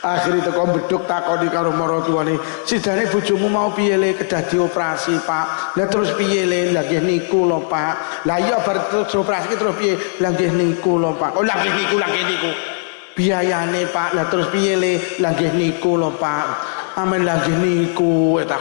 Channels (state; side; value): silent; right; digital silence